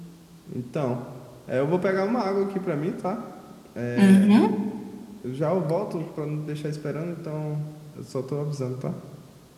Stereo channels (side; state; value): both; identical; correlation 1.00